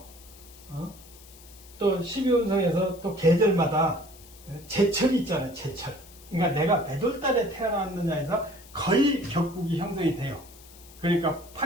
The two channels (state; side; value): noise; left; hiss, 21 dB below the sound